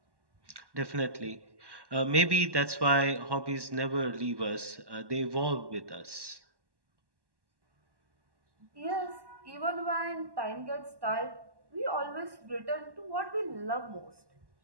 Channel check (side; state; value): left; late; 1.1 ms